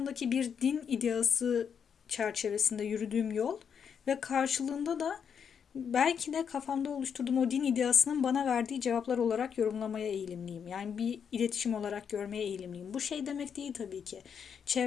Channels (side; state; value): right; quieter; 7.3 dB